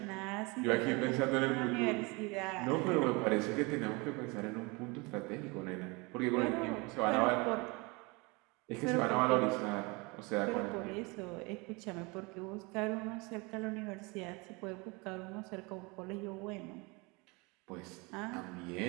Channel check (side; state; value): left; quieter; 27.2 dB